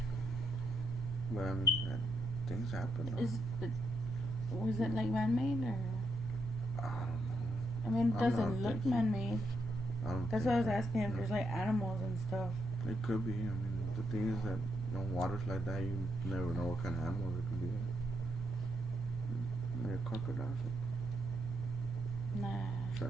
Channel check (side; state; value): left; noise; rumble, 14 dB below the sound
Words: But I mean, things happen though. Was it like man-made, or? I don't know. I mean, it doesn't look man-made. That's why I was so. asking if there's like animals and stuff. It could be. I mean, the thing is that waters like that, you never know what kind of animals it could be. Maybe a crocodile. Nah.